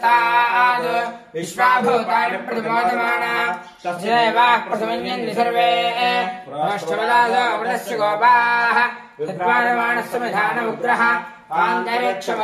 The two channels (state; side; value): identical; both; correlation 1.00